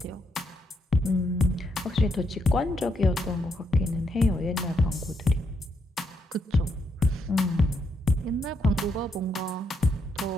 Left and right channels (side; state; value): both; normal; correlation 0.78